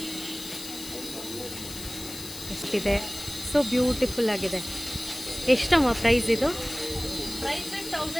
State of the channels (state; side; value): noise; left; hiss, 11 dB below the sound